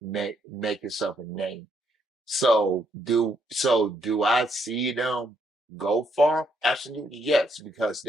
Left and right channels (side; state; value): both; normal; correlation 0.73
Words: make yourself a name. So do I see them go far? Absolutely yes, because